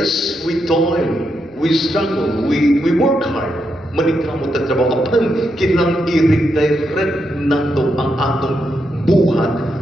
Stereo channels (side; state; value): left; noise; hum, 29 dB below the sound